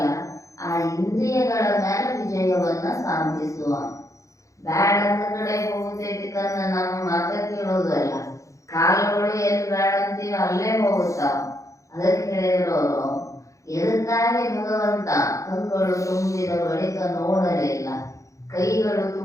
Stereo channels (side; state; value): right; late; 0.15 ms